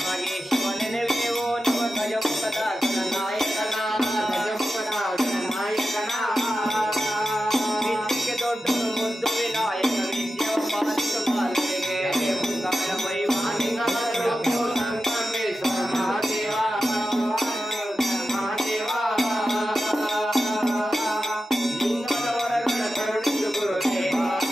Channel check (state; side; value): normal; both; correlation 0.92